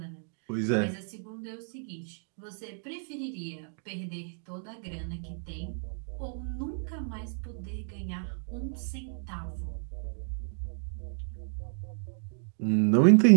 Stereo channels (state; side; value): silent; left; digital silence